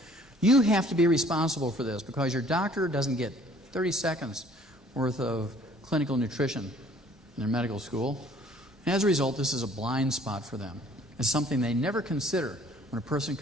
you have to be responsible for this, because your doctor doesn't get 30 seconds worth of clinical nutrition in their medical school. And as a result, this is a blind spot for them. It's something they never consider when a person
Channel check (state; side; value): normal; both; correlation 0.56